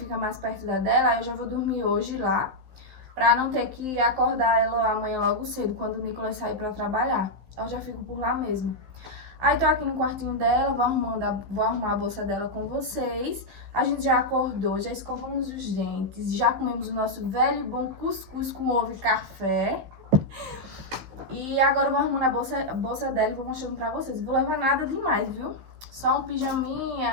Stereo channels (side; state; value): left; late; 15 ms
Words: mais perto da dela, eu já vou dormir hoje lá, pra não ter que acordar ela amanhã logo cedo, quando o Nicolas sair pra trabalhar. Eu já fico por lá mesmo. Aí tô aqui no quartinho dela, vou arrumar a bolsa dela com vocês. A gente já acordou, já escovamos os dentes, já comemos o nosso velho e bom cuscuz com ovo e café. E agora eu vou arrumando a bolsa dela e vou mostrando pra vocês. Não vou levar nada demais, viu? Só um